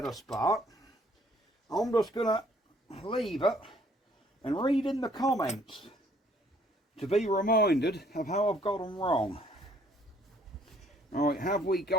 a spark, I'm just going to leave it and read in the comments to be reminded of how I've got them wrong. Right, have we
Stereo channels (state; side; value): normal; both; correlation 0.62